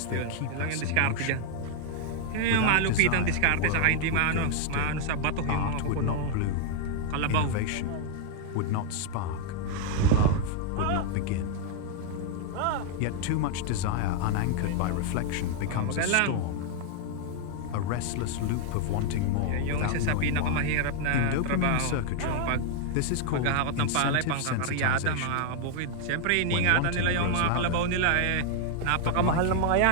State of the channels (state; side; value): different; both; correlation 0.00